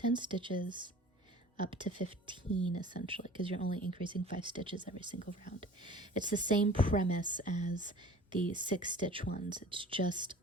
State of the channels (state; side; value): normal; both; correlation 0.44